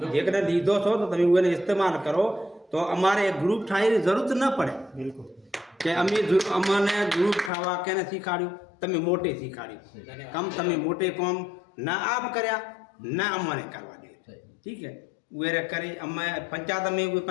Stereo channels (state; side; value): drops out; right; at 7.5 s